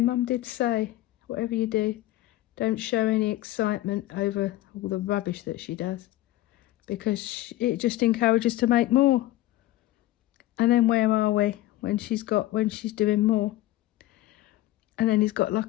did say, whatever you do, don't show any excitement over all the rubbish that she does, because it just encourages to make more. And then where are we when she's doing more? And then he's got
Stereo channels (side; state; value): right; quieter; 15.9 dB